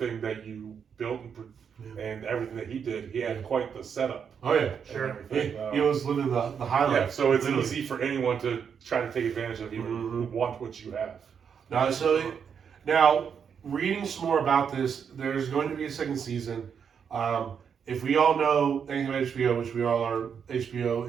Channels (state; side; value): quieter; left; 7.1 dB